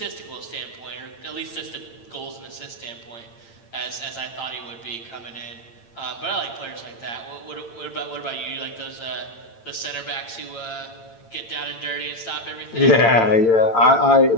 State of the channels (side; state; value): right; late; 8.8 ms